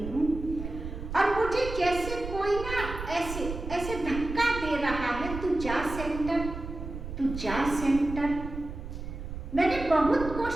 हूँ और मुझे जैसे कोई ना ऐसे ऐसे धक्का दे रहा है, तू जा सेंटर, तू जा सेंटर। मैंने बहुत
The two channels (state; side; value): noise; right; rumble, 8 dB below the sound